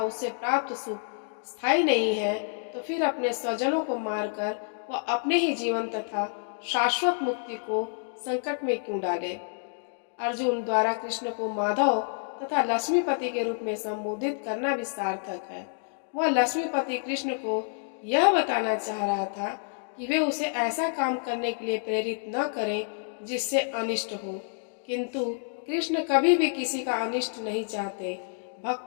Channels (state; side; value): silent; right; digital silence